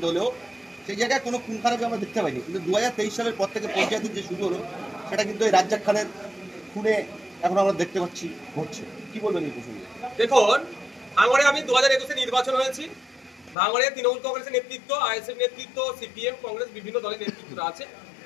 হলেও সেই জায়গায় কোনো খুন খারাপি আমরা দেখতে পাইনি। কিন্তু 2023 সালের পর থেকে পঞ্চায়েতের যে শুরু হলো সেটা কিন্তু এই রাজ্জাক খানের খুনে এখন আমরা দেখতে পাচ্ছি ঘটছে। কি বলবেন এই প্রসঙ্গে? দেখুন, ভাঙড়ে আমি 2021-এ নির্বাচন হয়েছি। ভাঙড়ে তৃণমূল কংগ্রেসের নেতৃত্ব, আইএসএফ নেতৃত্ব, সিপিএম, কংগ্রেস, বিভিন্ন দলের নেতৃত্বরা আছে।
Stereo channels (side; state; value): right; drops out; at 13.6 s